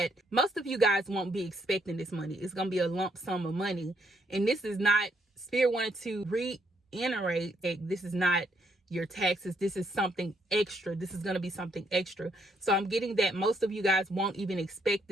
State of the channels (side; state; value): both; normal; correlation 0.73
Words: most of you guys won't be expecting this money. It's going to be a lump sum of money. And this is not, Spirit wanted to reiterate that this is not your taxes. This is something extra. This is going to be something extra. So I'm getting that most of you guys won't even expect